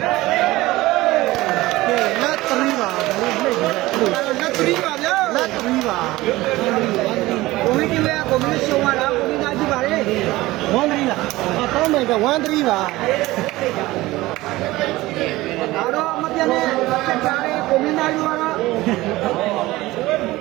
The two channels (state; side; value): quieter; left; 18.6 dB